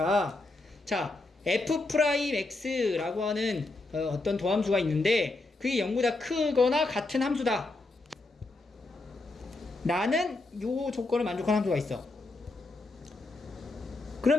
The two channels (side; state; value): right; quieter; 3.1 dB